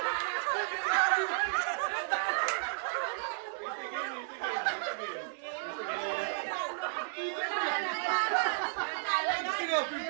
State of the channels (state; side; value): silent; left; digital silence